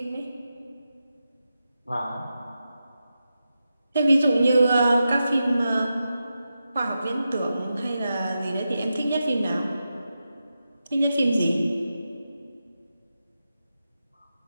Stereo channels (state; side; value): inverted; both; correlation -0.89